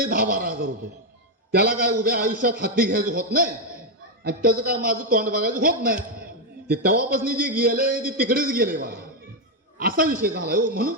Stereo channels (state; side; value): normal; both; correlation 0.04